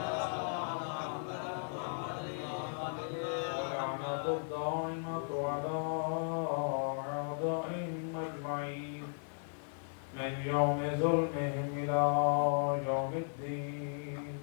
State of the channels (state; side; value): silent; right; 54 dB below the other